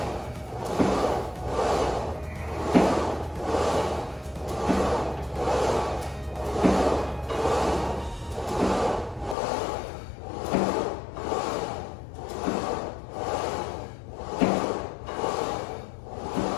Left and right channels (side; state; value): right; drops out; at 9.3 s